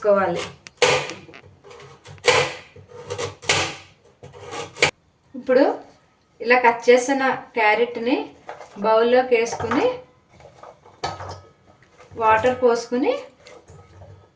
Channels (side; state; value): both; identical; correlation 1.00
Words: ఇప్పుడు ఇలా కట్ చేసిన క్యారెట్ని బౌల్లోకి వేసుకొని వాటర్ పోసుకొని